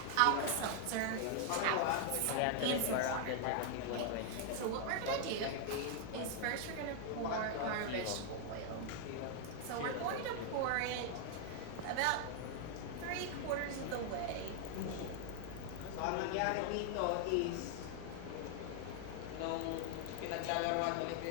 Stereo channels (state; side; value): different; both; correlation 0.00